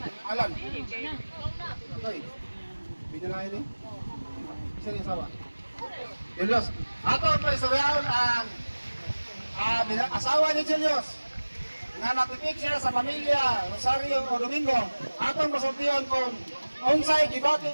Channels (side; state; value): both; inverted; correlation -1.00